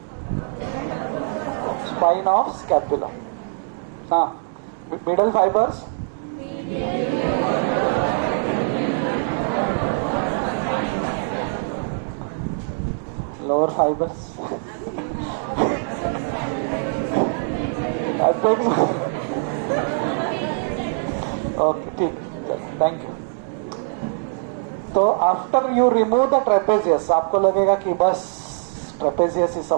spine of scapula. Middle fibers, lower fibers. I think okay, ठीक. Thank you. तो after you remove the trapezius, आपको लगेगा कि बस ट्रेपेजियस ही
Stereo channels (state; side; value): silent; left; digital silence